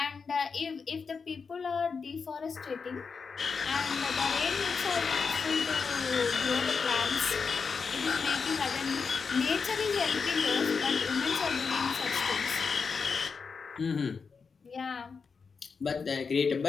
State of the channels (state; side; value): quieter; right; 5.3 dB